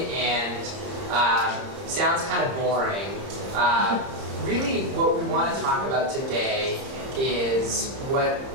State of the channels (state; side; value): late; left; 30 ms